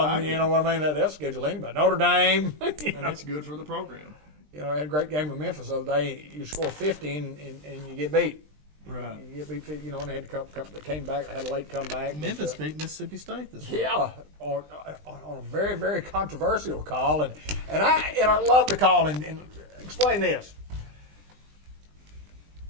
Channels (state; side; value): late; left; 20 ms